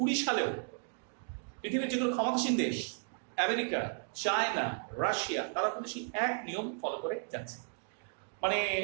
সালেও পৃথিবীর যেগুলো ক্ষমতাসীন দেশ, আমেরিকা, চায়না, রাশিয়া, তারা কিন্তু সেই এক নিয়ম ফলো করে যাচ্ছে। মানে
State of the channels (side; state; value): left; silent; 55 dB below the other